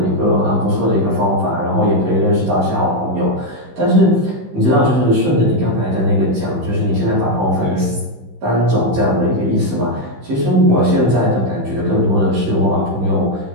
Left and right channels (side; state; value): left; late; 16 ms